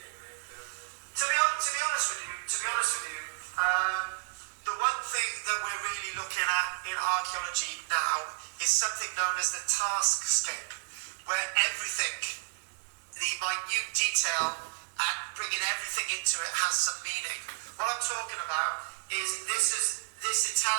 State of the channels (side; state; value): left; silent; 57 dB below the other